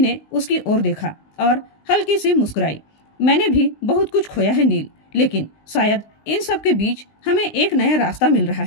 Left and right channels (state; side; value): late; right; 19 ms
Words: उसकी ओर देखा और हल्की सी मुस्कुराई। मैंने भी बहुत कुछ खोया है नील, लेकिन शायद इन सब के बीच हमें एक नया रास्ता मिल रहा